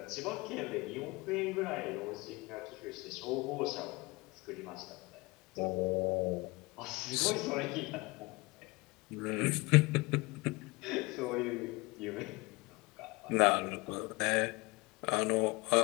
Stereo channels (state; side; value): quieter; right; 24.2 dB